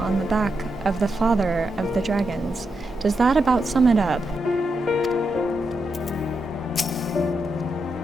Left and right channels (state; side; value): normal; both; correlation 0.84